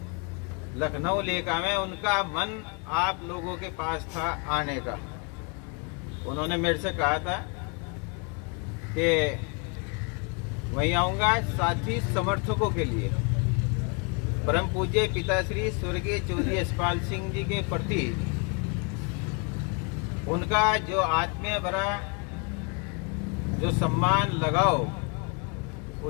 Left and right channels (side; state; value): right; quieter; 34.0 dB